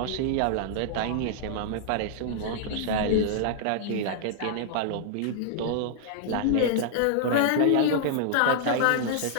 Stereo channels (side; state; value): both; different; correlation -0.01